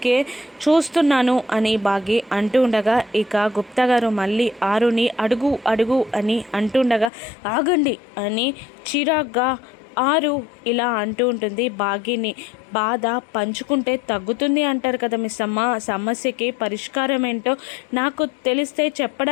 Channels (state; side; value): drops out; right; at 7.1 s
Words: చూస్తున్నాను అని బాగి అంటూ ఉండగా ఇక గుప్తా గారు మళ్ళీ ఆరుని అడుగు అడుగు అని అంటుండగా ఆగండి అని చిరాగ్గా ఆరు ఇలా అంటూ ఉంటుంది బాగిని. బాధ పంచుకుంటే తగ్గుతుంది అంటారు కదా మిస్ అమ్మ, సమస్యకి పరిష్కారం ఏంటో నాకు తెలిస్తే